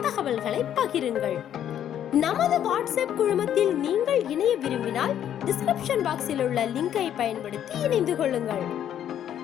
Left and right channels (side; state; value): right; quieter; 10.3 dB